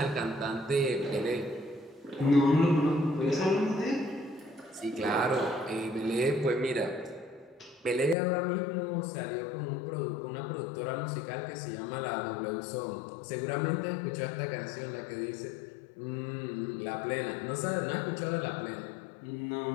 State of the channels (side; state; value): right; drops out; at 8.2 s